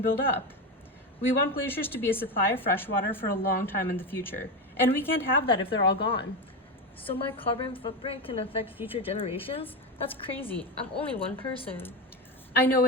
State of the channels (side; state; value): both; normal; correlation 0.16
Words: build up. We want glaciers to be a supply of fresh water for a long time in the future, and we can't have that if they're all gone. So my carbon footprint can affect future generations? That's crazy. I'm only one person. I know